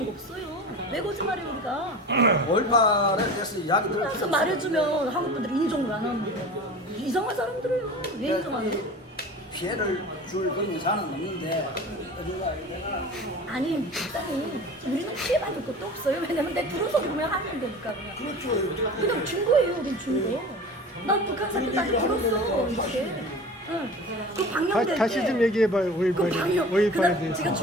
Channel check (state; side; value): normal; both; correlation 0.36